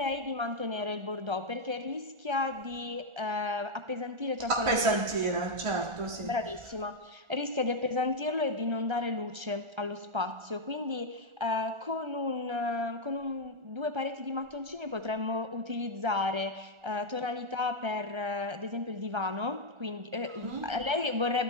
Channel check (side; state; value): left; late; 1.3 ms